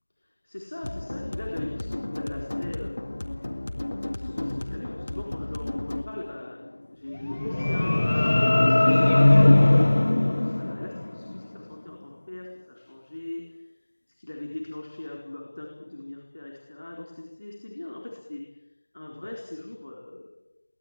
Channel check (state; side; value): inverted; both; correlation -1.00